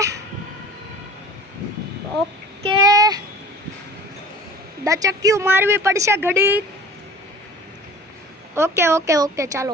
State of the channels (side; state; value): both; normal; correlation 0.43